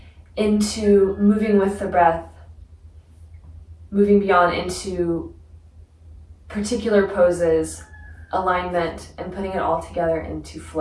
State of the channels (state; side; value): identical; both; correlation 1.00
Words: into moving with the breath, moving beyond into particular poses, alignment, and putting it all together into